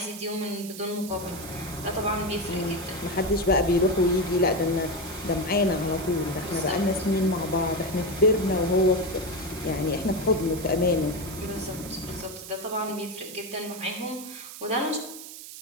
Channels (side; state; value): right; noise; hiss, 13 dB below the sound